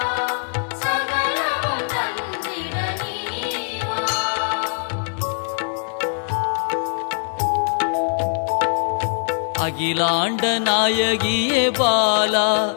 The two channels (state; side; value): silent; right; digital silence